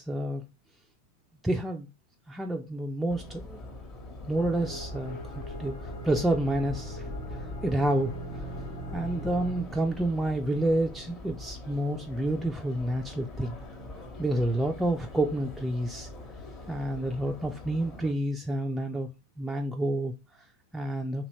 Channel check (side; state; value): both; normal; correlation 0.82